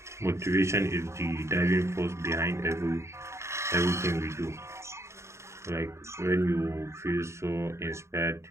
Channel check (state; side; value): late; left; 0.14 ms